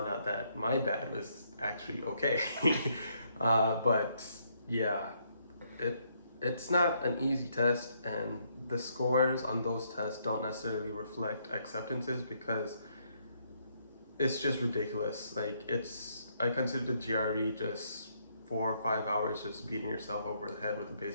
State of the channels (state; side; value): inverted; both; correlation -0.73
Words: out that my bad was actually okay. But yeah, it's not an easy test, and the scores on those tests don't necessarily reflect acceptances because it's just ridiculous. Like I consider the GRE just 4 or 5 hours just beating yourself over the head with a